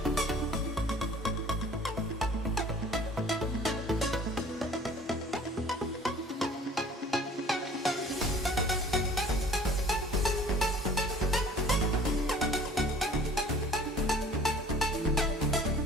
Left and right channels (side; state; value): both; normal; correlation 0.50